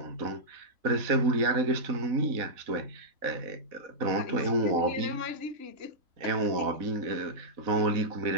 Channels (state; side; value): late; left; 4.0 ms